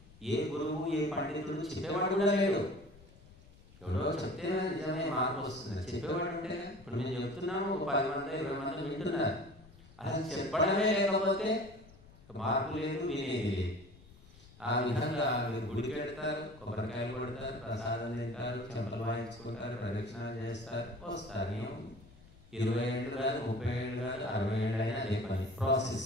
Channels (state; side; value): noise; left; rumble, 23 dB below the sound